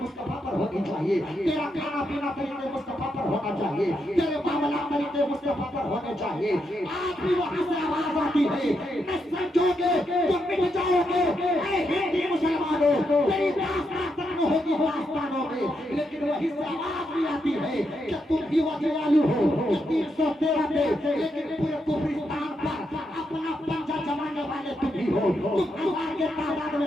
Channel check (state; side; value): normal; both; correlation 0.81